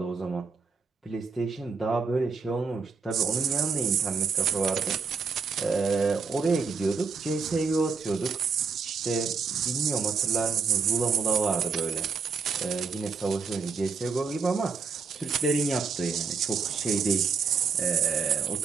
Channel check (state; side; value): quieter; left; 5.1 dB